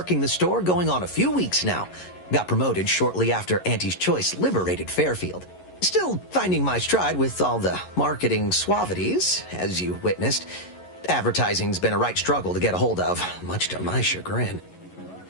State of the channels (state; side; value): late; right; 11 ms